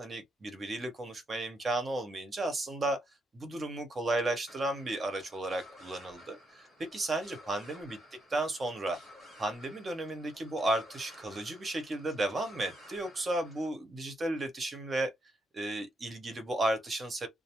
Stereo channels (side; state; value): both; normal; correlation 0.79